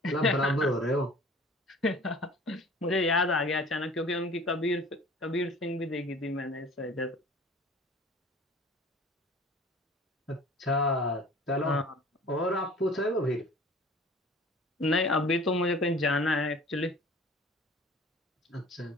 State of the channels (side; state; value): both; normal; correlation 0.46